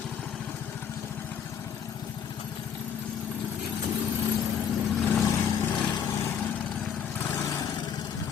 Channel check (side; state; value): right; quieter; 7.8 dB